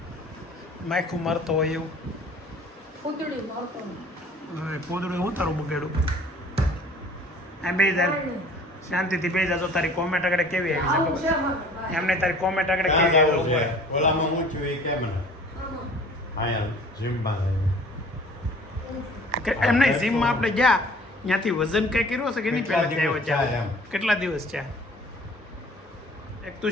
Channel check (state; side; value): normal; both; correlation 0.49